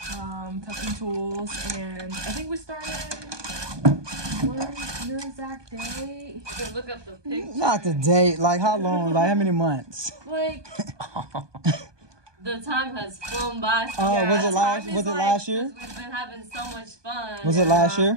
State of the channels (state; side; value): late; left; 1.2 ms